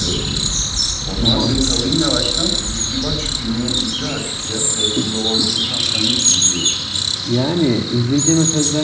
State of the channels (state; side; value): identical; both; correlation 1.00